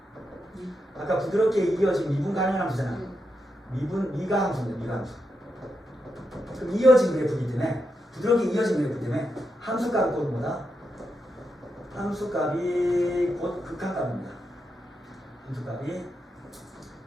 아까 부드럽게 이어진 미분 가능한 함수잖아. 미가 함수입니다. 미가 함수. 그럼 이어진 그래프이기 때문에 부드럽게 이어진 그래프 때문에 함수값이 곧 뭐다? 함수값이 곧 극한값입니다. 함수값이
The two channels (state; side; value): normal; both; correlation 0.85